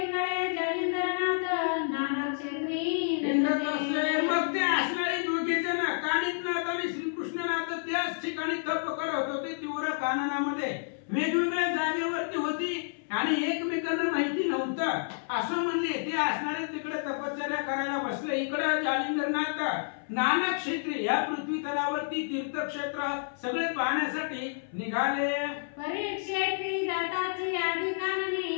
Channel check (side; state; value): right; silent; 58 dB below the other